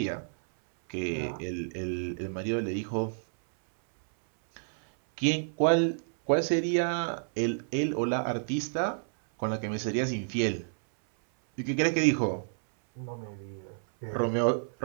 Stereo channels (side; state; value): left; silent; 58 dB below the other